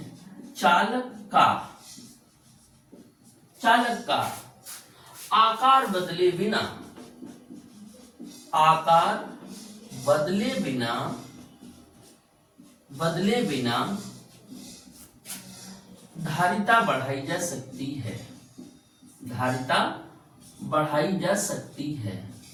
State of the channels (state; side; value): identical; both; correlation 1.00